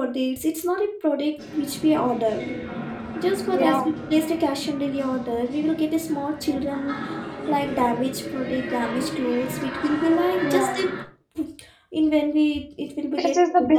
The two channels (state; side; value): identical; both; correlation 1.00